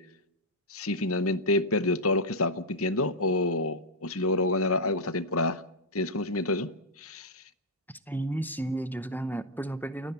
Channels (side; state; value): both; normal; correlation -0.03